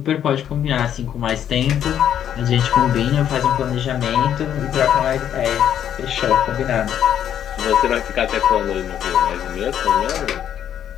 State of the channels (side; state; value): right; quieter; 9.8 dB